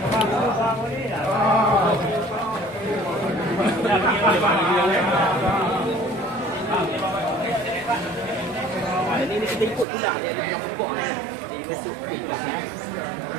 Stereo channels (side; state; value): left; drops out; at 9.9 s